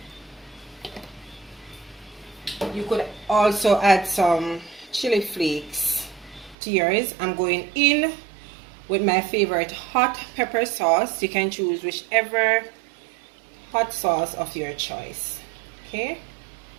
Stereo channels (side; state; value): left; drops out; at 6.6 s